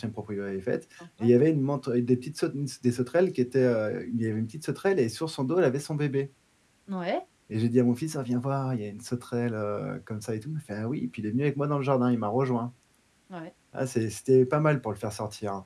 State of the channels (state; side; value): identical; both; correlation 1.00